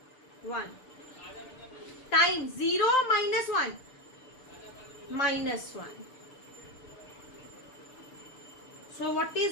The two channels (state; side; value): late; right; 6.7 ms